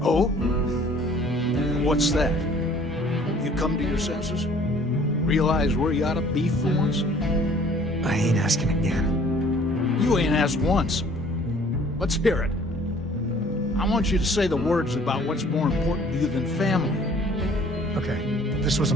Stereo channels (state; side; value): normal; both; correlation 0.54